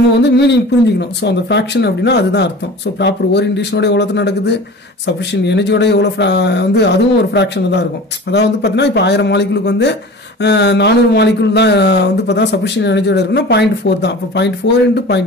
வந்து மீனிங் புரிஞ்சுக்கணும். ஸோ அந்த ஃப்ராக்ஷன் அப்படின்னா அதுதான் அர்த்தம். ஸோ ப்ராப்பர் ஓரியன்டேஷனோட எவ்வளோ நடக்குது, சஃபிஷியன்ட் எனர்ஜியோட எவ்வளோ வந்து அதுவும் ஒரு ஃப்ராக்ஷன் தான் இருக்கும். அதாவது வந்து பார்த்தீங்கன்னா இப்போ 1000 மாலிகுலுக்கு வந்து 400 மாலிகுல் தான் வந்து பார்த்தா சஃபிஷியன்ட் எனர்ஜியோட இருக்குன்னா 0.4 தான். அப்போ 0.4 ×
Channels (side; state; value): both; normal; correlation 0.38